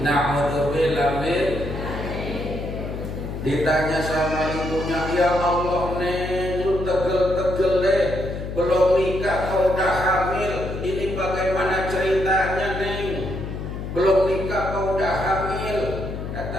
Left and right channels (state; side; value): noise; left; hum, 6 dB below the sound